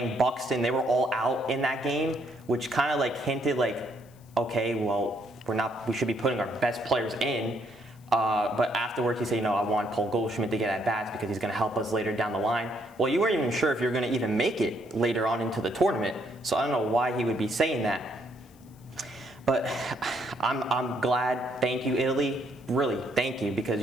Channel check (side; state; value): left; noise; hiss, 29 dB below the sound